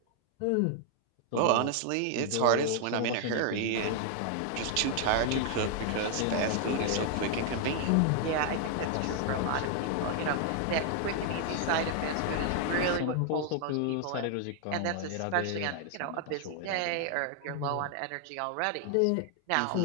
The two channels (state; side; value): different; both; correlation 0.00